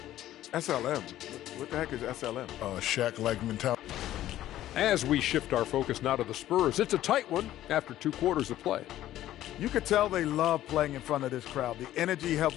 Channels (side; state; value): right; quieter; 13.4 dB